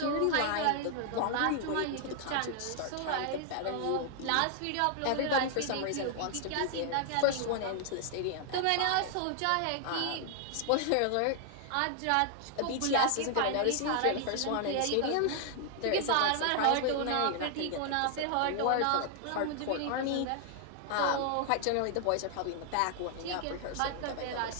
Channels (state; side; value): different; both; correlation 0.00